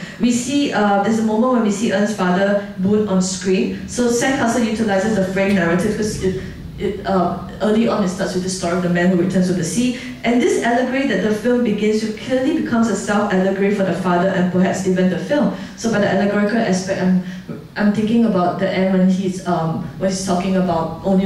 we see, there's a moment when we see En's father, Boon, on screen. So Sandcastle utilizes the frame narrative because early on it starts with the story of the man who returns to the sea. And this allegory that the film begins with clearly becomes a self-allegory for the father and perhaps even the film. So by the allegorical aspect, I'm thinking about the end when he's talking about only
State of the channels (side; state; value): both; identical; correlation 1.00